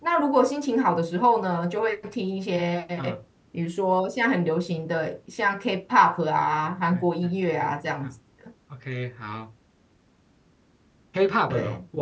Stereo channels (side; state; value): both; identical; correlation 1.00